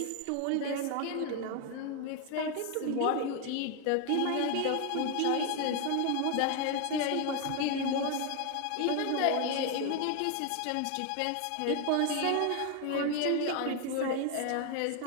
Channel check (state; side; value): different; both; correlation 0.01